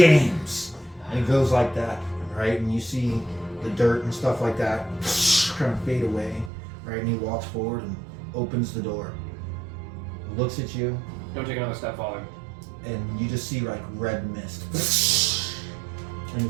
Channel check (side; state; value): left; drops out; at 6.5 s